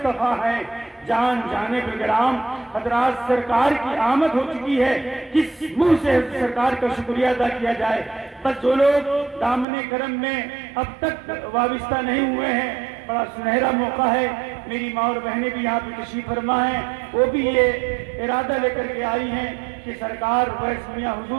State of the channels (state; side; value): drops out; left; at 9.7 s